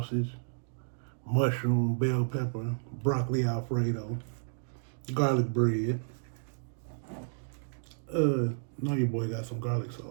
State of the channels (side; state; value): left; silent; digital silence